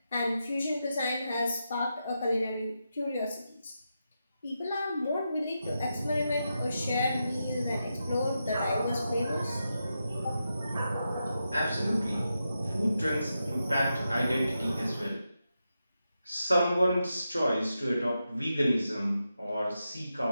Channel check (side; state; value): both; inverted; correlation -0.87